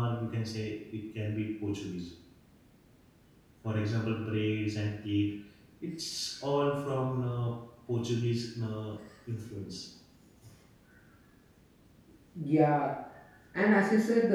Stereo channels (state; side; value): identical; both; correlation 1.00